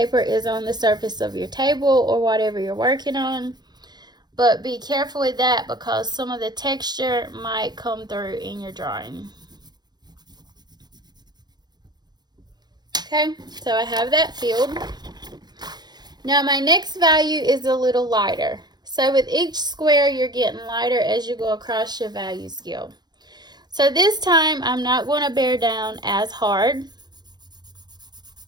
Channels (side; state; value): left; late; 0.20 ms